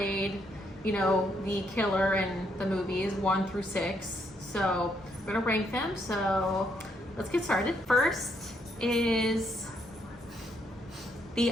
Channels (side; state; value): both; normal; correlation 0.74